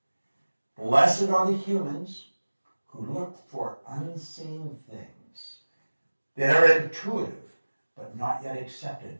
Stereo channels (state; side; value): inverted; both; correlation -1.00